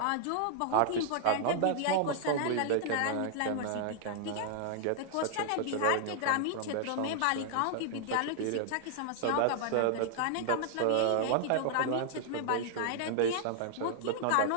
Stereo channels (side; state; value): both; different; correlation -0.01